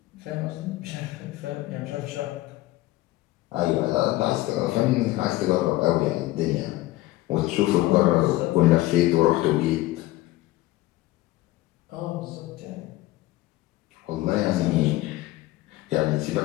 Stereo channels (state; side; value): quieter; right; 17.5 dB